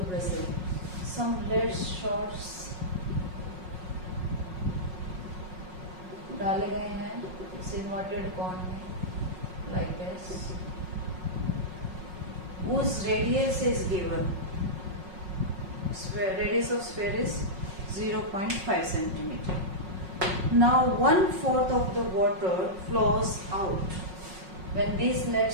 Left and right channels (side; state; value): left; late; 5.5 ms